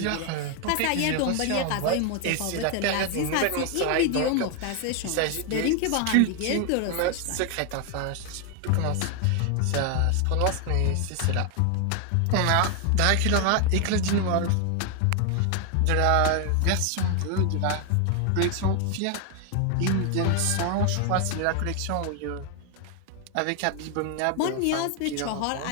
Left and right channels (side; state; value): both; different; correlation 0.01